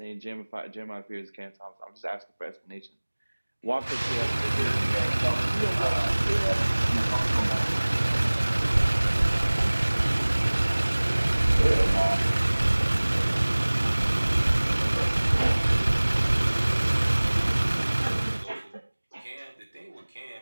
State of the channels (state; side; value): inverted; both; correlation -1.00